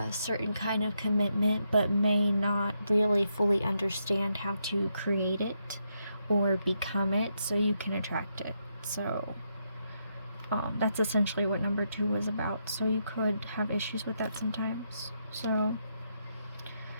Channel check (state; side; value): inverted; both; correlation -0.81